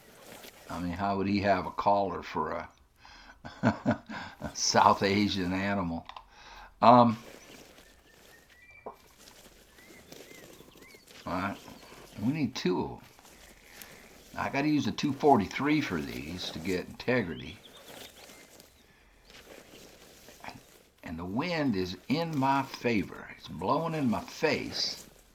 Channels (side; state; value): both; identical; correlation 1.00